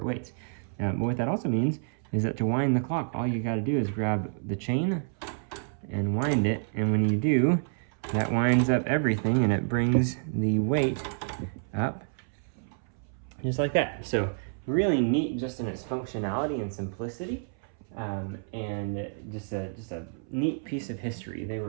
weights. But what that also means is that to wind the clock, all you got to do is grab the chain and wind it, and when you do, that winds up everything, and it brings the weight up just like that. So really neat just in its functionality and simplicity, and just a neat piece of history. They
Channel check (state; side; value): silent; left; 59 dB below the other